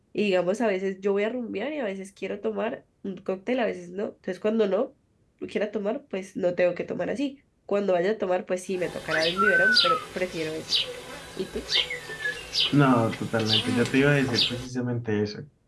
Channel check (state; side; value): identical; both; correlation 1.00